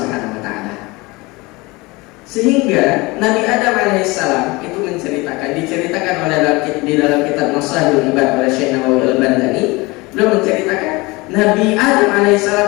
wa taala. Sehingga Nabi Adam alaihissalam itu diceritakan oleh di dalam kitab Maslahul Ibad oleh Syekh Nawawi Al-Bandani, beliau menceritakan Nabi Adam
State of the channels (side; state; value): right; quieter; 23.5 dB